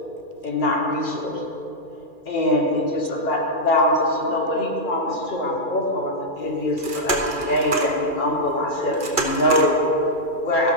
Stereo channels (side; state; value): right; late; 2.4 ms